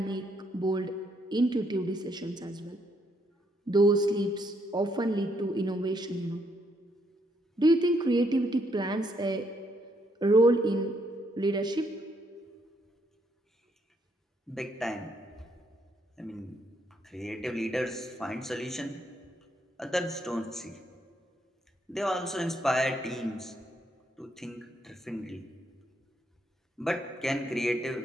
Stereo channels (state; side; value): normal; both; correlation 0.74